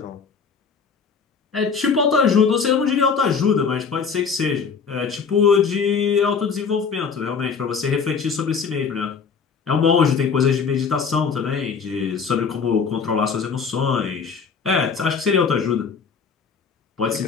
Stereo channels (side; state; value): right; quieter; 5.8 dB